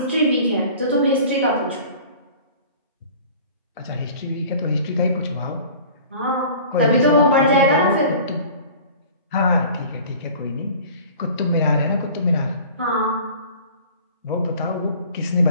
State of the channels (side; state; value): both; inverted; correlation -0.44